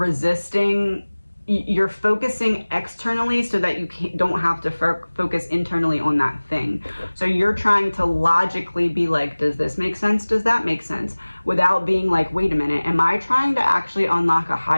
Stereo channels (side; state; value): both; inverted; correlation -1.00